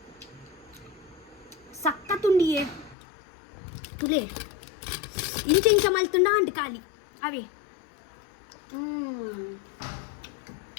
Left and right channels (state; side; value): drops out; right; at 3.0 s